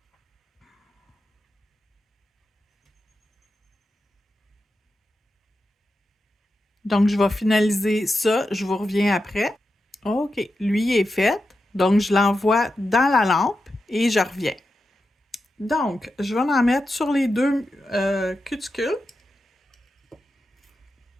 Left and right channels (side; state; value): both; normal; correlation 0.89